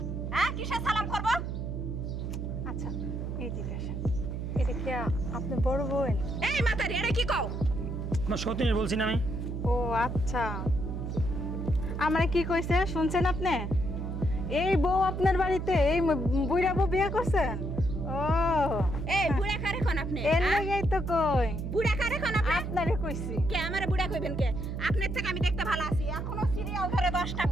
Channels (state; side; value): noise; right; hum, 4 dB below the sound